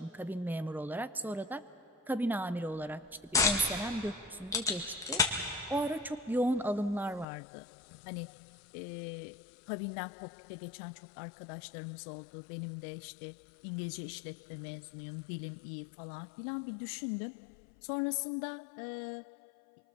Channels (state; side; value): drops out; right; at 7.2 s